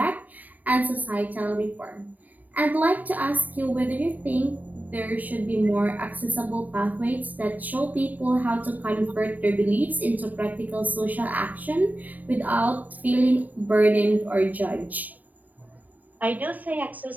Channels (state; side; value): late; left; 0.081 ms